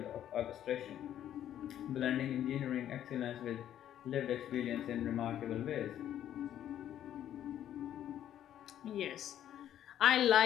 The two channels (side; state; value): right; quieter; 11.0 dB